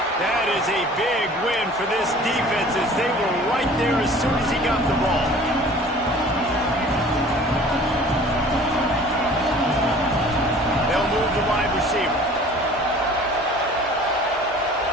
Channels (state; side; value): normal; both; correlation 0.47